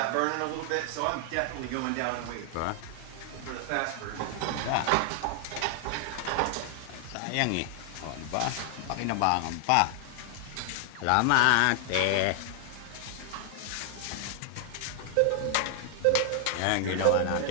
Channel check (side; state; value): both; different; correlation 0.00